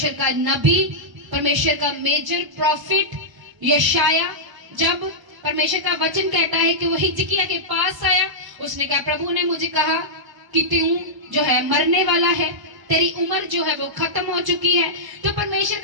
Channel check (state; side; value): late; left; 1.0 ms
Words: का नबी, परमेश्वर का मेजर प्रॉफिट यशाया, जब परमेश्वर का वचन कहता है कि वो हिजकिया के पास आया, उसने कहा प्रभु ने मुझे कहा कि तू जो है मरने वाला है, तेरी उम्र जो है वो खत्म हो चुकी है। तो परमेश्वर